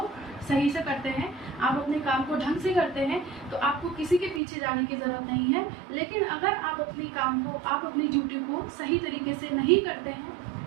सही से करते हैं, आप अपने काम को ढंग से करते हैं, तो आपको किसी के पीछे जाने की ज़रूरत नहीं है। लेकिन अगर आप अपनी ड्यूटी को सही तरीके से नहीं करते हैं,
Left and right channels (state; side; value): drops out; left; at 4.4 s